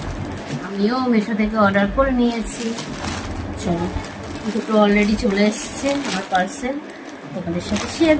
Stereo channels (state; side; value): identical; both; correlation 1.00